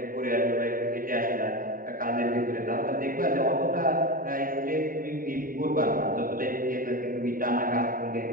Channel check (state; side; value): late; left; 0.41 ms